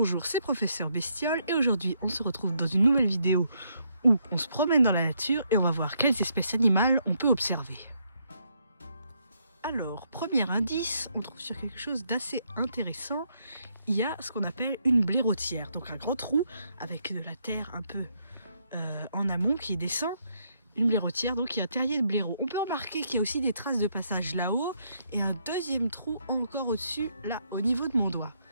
c'est Professeur Bestiole et aujourd'hui on se retrouve dans une nouvelle vidéo où on se promène dans la nature et on va voir quelles espèces animales on peut observer. Alors, premier indice, on trouve sur quelque chose d'assez intéressant. Il y a ce qu'on appelle une blairotière, donc un grand trou avec de la terre un peu en amont qui descend. Une blairotière, donc il y a un terrier de blaireau. On peut remarquer qu'il y a aussi des traces de passage là-haut et un deuxième trou encore au-dessus, là, au niveau de mon doigt.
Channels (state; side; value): inverted; both; correlation -0.75